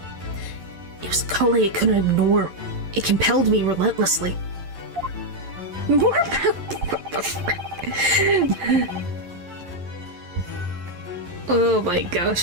It was a calling I couldn't ignore. It compelled me relentlessly. More about what the frick? Oh my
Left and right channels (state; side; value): late; left; 11 ms